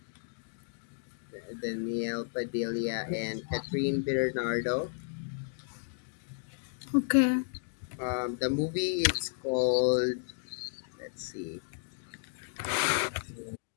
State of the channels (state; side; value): silent; right; digital silence